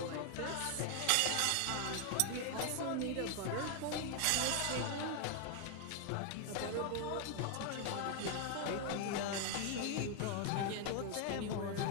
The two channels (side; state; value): both; different; correlation 0.00